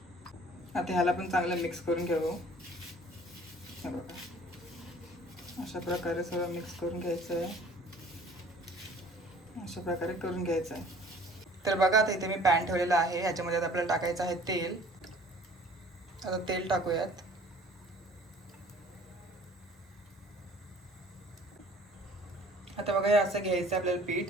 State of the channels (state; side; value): normal; both; correlation 0.52